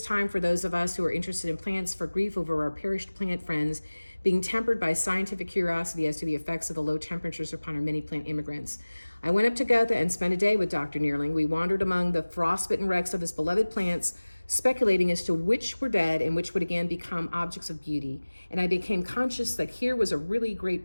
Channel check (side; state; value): both; inverted; correlation -1.00